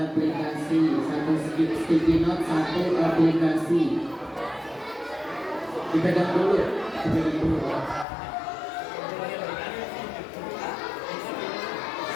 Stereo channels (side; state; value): right; drops out; at 8.1 s